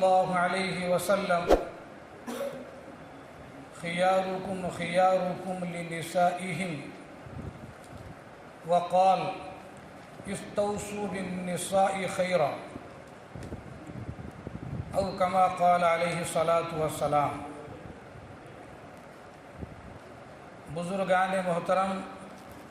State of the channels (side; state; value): both; identical; correlation 1.00